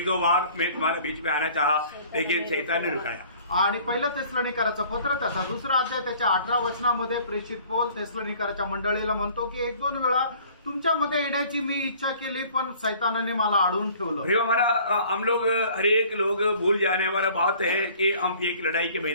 दो बार मैं तुम्हारे बीच में आना चाहा लेकिन शैतान ने रुकाया। आणि पहिलं थिस्सलुनीकराचं पत्र त्याचा दुसरा अध्याय त्याच्या 18 वचनामध्ये प्रेषित पौल थिस्सलुनीकराच्या मंडळीला म्हणतो की एक दोन वेळा तुमच्यामध्ये येण्याची मी इच्छा केली पण शैतानाने मला अडवून ठेवलं। भाई हमारा हम लोग हर एक लोग भूल जाने वाला बात है कि हम एक लड़ाई के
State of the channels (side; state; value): both; inverted; correlation -0.52